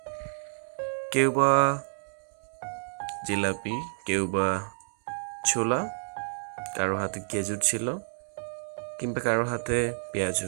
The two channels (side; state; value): left; silent; digital silence